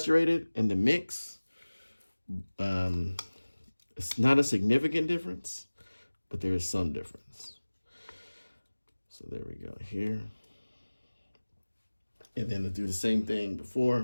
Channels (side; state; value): both; inverted; correlation -1.00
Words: and the mix. It's not a significant difference, but there is some difference. So there we go here. And then to do the same thing